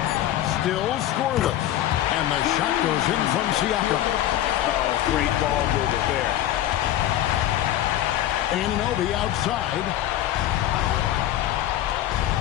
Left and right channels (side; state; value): right; quieter; 12.8 dB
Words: Still scoreless. And the shot goes in from Siakam. Oh, great ball movement there. Anunoby outside.